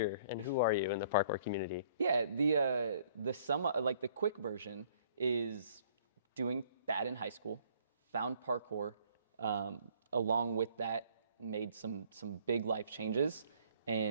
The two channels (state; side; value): inverted; both; correlation -0.60